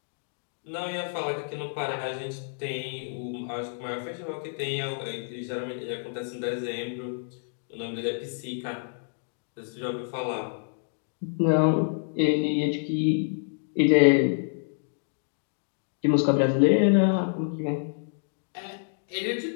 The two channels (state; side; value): silent; right; digital silence